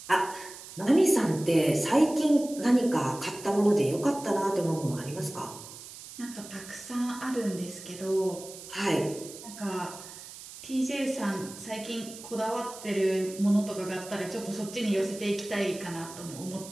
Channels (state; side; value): noise; right; hiss, 14 dB below the sound